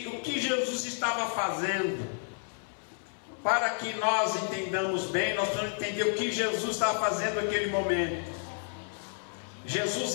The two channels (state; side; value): silent; right; 57 dB below the other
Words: o que Jesus estava fazendo? Para que nós entendamos bem, nós vamos entender o que Jesus estava fazendo naquele momento. Jesus,